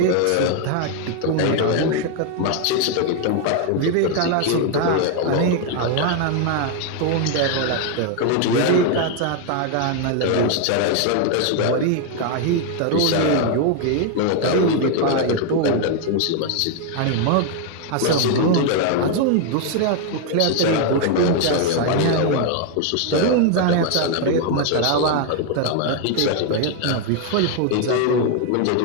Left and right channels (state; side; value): different; both; correlation 0.01